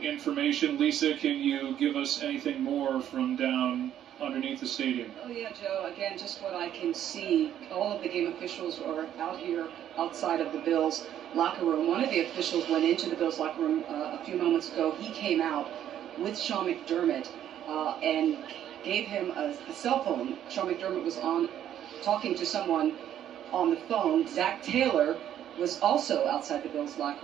information. Lisa, can you give us anything more from down underneath the stadium? Oh, yeah, Joe. Again, just what I can see, all of the game officials are out here outside of the Bills locker room. One of the officials went into the Bills locker room a few moments ago. He came out with Sean McDermott and gave him a cell phone. Sean McDermott was on talking to someone on the phone. Zach Taylor was also outside the Bills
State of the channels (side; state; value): left; quieter; 10.8 dB